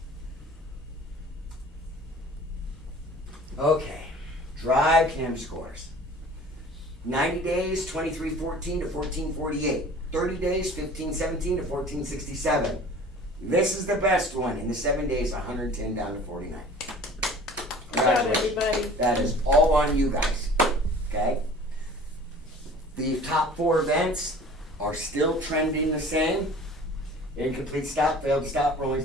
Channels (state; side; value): normal; both; correlation 0.46